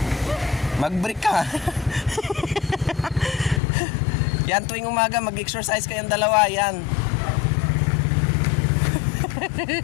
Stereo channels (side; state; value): right; drops out; at 3.6 s